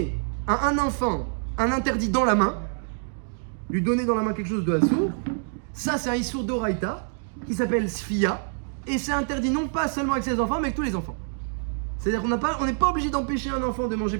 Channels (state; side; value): silent; left; 61 dB below the other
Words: à un enfant un interdit dans la main, lui donner dans la main quelque chose de assourd, ça c'est un issour d'oraïta qui s'appelle sfia, et c'est interdit non pas seulement avec ses enfants, mais avec tous les enfants. C'est-à-dire qu'on n'est pas obligé d'empêcher un enfant de manger